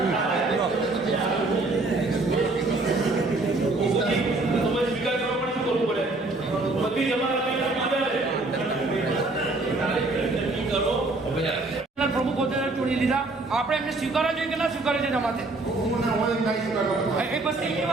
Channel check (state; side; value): quieter; left; 3.2 dB